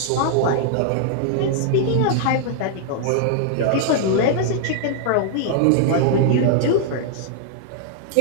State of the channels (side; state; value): both; different; correlation -0.01